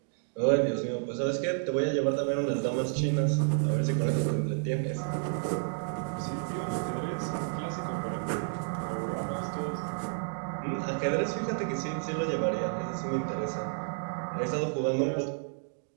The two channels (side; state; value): left; silent; digital silence